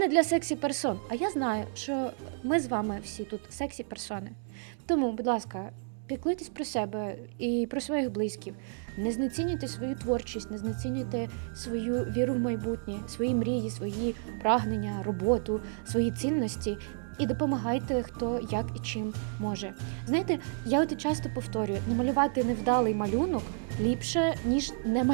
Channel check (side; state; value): left; silent; 57 dB below the other